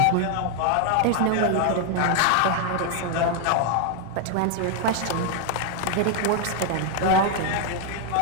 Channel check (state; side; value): different; both; correlation 0.00